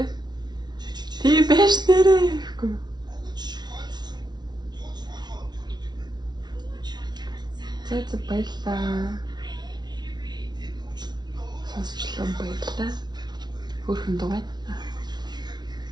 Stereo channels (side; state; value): left; late; 0.20 ms